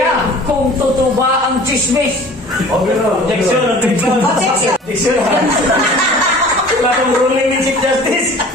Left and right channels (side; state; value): both; normal; correlation 0.45